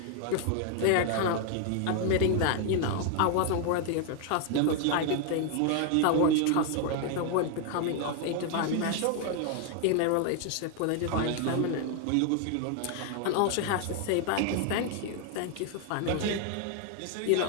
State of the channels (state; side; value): different; both; correlation 0.00